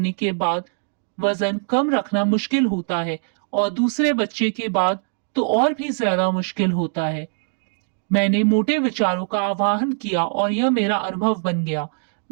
के बाद वजन कम रखना मुश्किल होता है और दूसरे बच्चे के बाद तो और भी ज्यादा मुश्किल होता है। मैंने मोटे विचारों का आवाहन किया और यह मेरा अनुभव बन गया।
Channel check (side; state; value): left; silent; digital silence